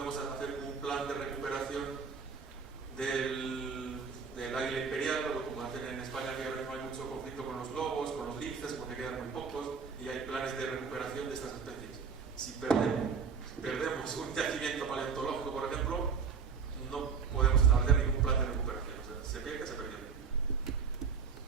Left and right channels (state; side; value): quieter; left; 5.9 dB